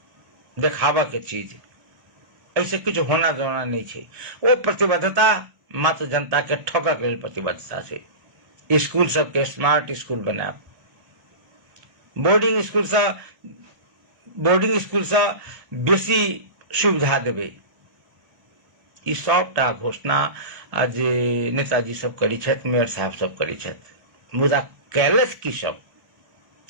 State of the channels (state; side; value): late; left; 1.8 ms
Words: देखावा के चीज। ऐसे कुछ होना जोना नहीं छै। वो प्रतिबद्धता मात्र जनता के ठोकर के लेल प्रतिबद्धता छै। स्कूल सबके स्मार्ट स्कूल बनाब, बोर्डिंग स्कूल से बेसी सुविधा देबै। ई सबटा घोषणा जे नेताजी सब करी छथि, मेयर साहब सब करी छथि। मुदा कैलस की सब